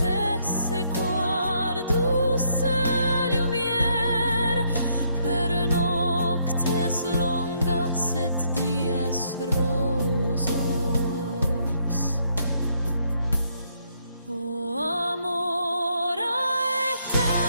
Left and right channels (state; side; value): inverted; both; correlation -0.71